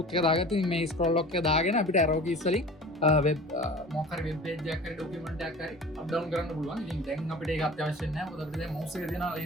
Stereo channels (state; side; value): normal; both; correlation 0.40